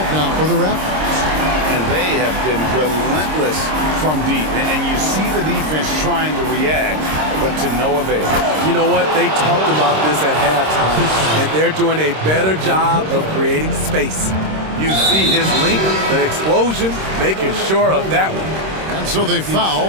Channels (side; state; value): left; late; 26 ms